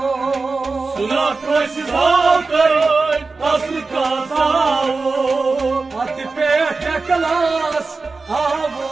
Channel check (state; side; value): quieter; left; 4.0 dB